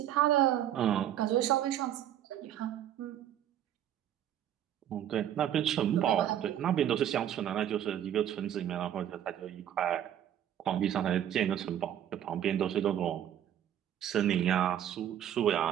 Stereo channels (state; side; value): quieter; left; 10.8 dB